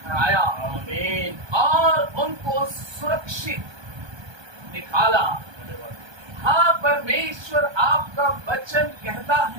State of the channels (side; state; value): left; late; 1.3 ms